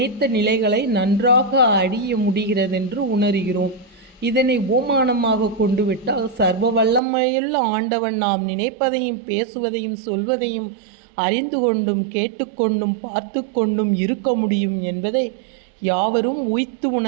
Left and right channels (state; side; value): drops out; left; at 7.0 s